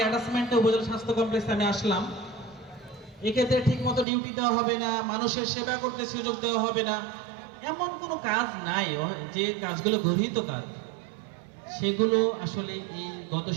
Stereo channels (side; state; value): left; drops out; at 4.0 s